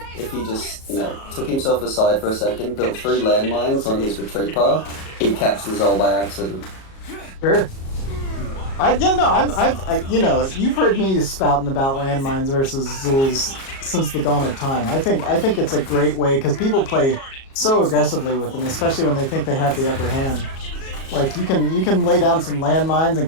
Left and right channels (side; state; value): right; late; 37 ms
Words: if he just, took himself aside for a second, built 3 landmines on his retreat path, he'd catch the Zol by accident. Sure. You've heard me spouting about landmines versus Zuls since the dawn of time. I think it's a great way because people play so aggressively with them, especially when they think they have the upper hand. Like you can lay down some landmines and